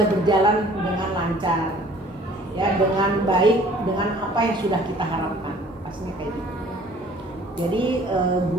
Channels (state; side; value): normal; both; correlation 0.53